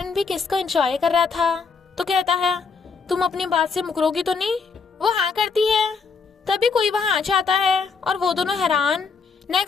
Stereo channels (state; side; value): quieter; right; 5.1 dB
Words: भी किस को एंजॉय कर रहा था। तो कहता है, तुम अपनी बात से मुकरोगी तो नहीं। वो हाँ करती है। तभी कोई वहाँ आ जाता है और वो दोनों हैरान।